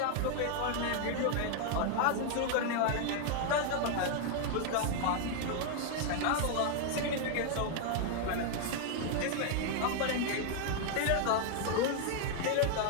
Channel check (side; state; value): both; different; correlation 0.00